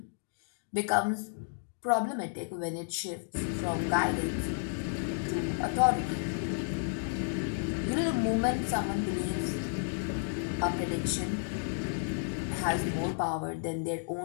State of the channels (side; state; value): right; silent; digital silence